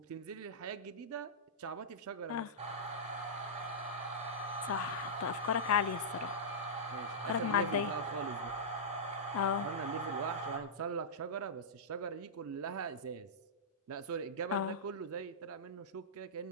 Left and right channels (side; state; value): both; normal; correlation -0.15